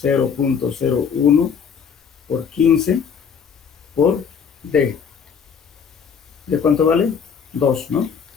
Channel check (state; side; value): quieter; right; 6.7 dB